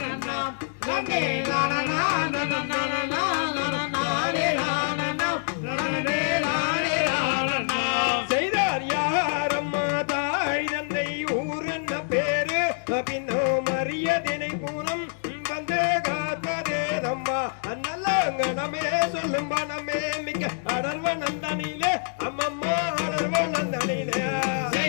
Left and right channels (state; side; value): silent; right; digital silence